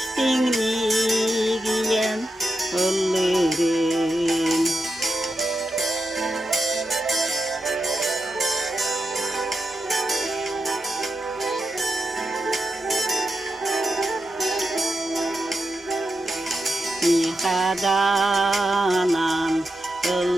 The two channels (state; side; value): normal; both; correlation 0.87